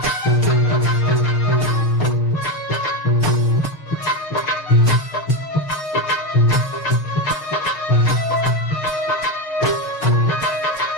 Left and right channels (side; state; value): right; late; 6.5 ms